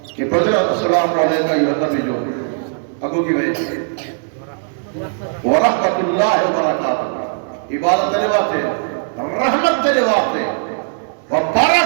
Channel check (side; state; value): left; silent; digital silence